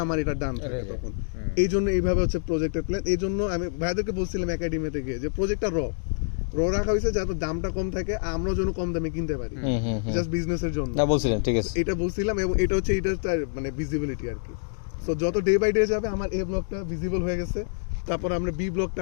আমার এটা ডান থাকে তখন। এই জন্য এইভাবে হচ্ছে প্রজেক্টের প্ল্যান। এই জন্য আমি ভাইদেরকে বলছিলাম একাডেমি থেকে যে প্রজেক্টটা র রাখা হয়েছে যাতে দামটা কম থাকে, আমরাও যেন কম দামে কিনতে পারি, জাস্ট বিজনেসের জন্য বলছিলেন। ঠিক আছে, এটা বলছিলাম, এবং এটা হচ্ছে এটা মানে ভিজিবিলিটি আর কি। সো যত ডে বাই ডে যাবে আমার এ ব্লকটা ভিজিবল হয়ে গেছে, তারপর আমরা বি ব্লকটা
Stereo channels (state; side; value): silent; right; digital silence